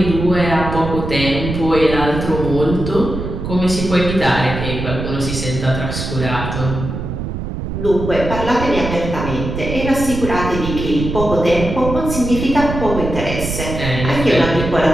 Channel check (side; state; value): right; noise; rumble, 5 dB below the sound